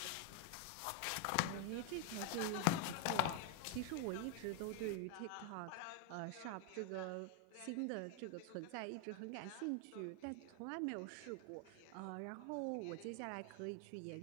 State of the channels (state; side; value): different; both; correlation 0.00